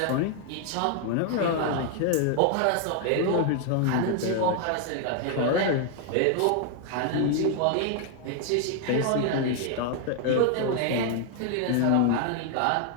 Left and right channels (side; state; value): both; different; correlation 0.00